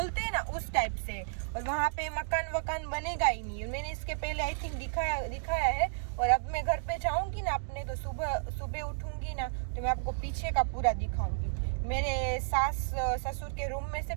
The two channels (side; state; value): left; silent; digital silence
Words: हैं ना उस टाइप से, और वहाँ पे मकान वकान बनेगा ही नहीं। मैंने इसके पहले आई थिंक दिखाया है। और अब मैं घर पे जाऊँगी ना अपने, तो सुबह उठूँगी ना, तो मैं आपको पीछे का पूरा दिखाऊँगी। मेरे सास ससुर के रूम में से